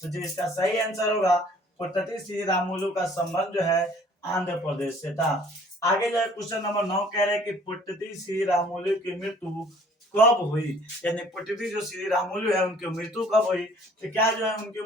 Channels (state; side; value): normal; both; correlation 0.55